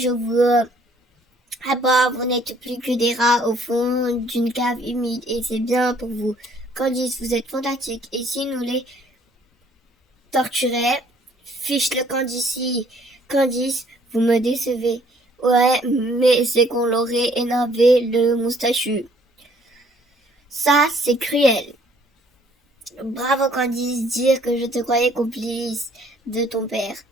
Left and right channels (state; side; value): normal; both; correlation 0.61